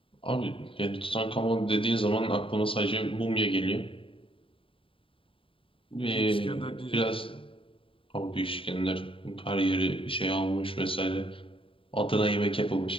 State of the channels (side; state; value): right; late; 0.26 ms